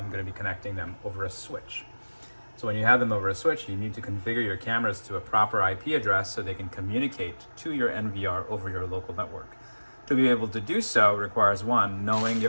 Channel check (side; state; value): both; inverted; correlation -1.00